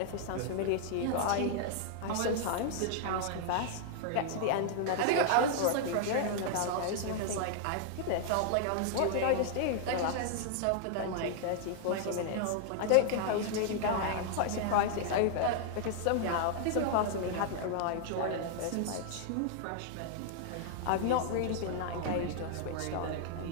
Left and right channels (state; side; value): different; both; correlation -0.01